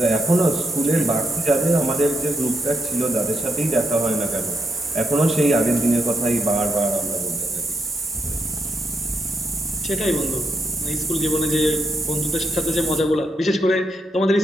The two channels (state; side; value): normal; both; correlation 0.79